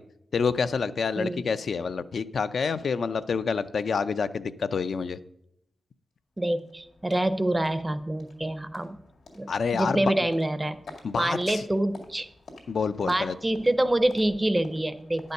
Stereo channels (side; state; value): both; normal; correlation 0.92